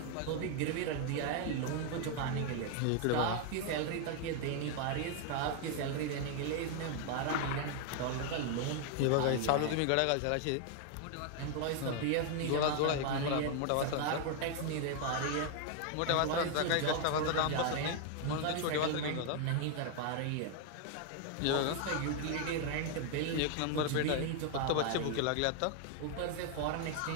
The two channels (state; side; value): different; both; correlation 0.00